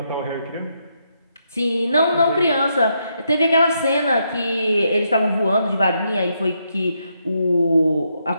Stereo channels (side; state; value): both; inverted; correlation -0.79